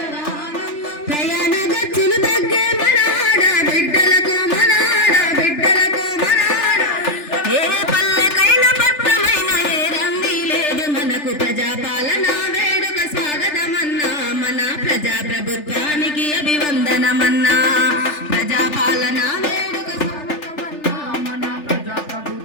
ప్రయాణ ఖర్చులు తగ్గే మన ఆడబిడ్డలకు మన ఆడబిడ్డలకు మన ఏ పల్లెకైన పట్టమైన ఏ రంది లేదు మనకు ప్రజాపాలన వేడుక స్వాగతమన్నా మన ప్రజాప్రభుత్వానికి అభివందనమన్నా ప్రజాపాలన వేడుక స్వాగతమన్నా మన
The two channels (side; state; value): right; late; 3.4 ms